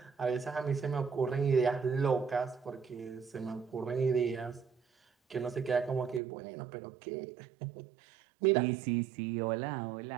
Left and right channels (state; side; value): drops out; left; at 6.2 s